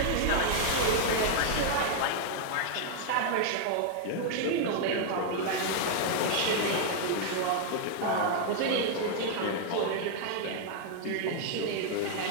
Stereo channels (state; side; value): different; both; correlation -0.01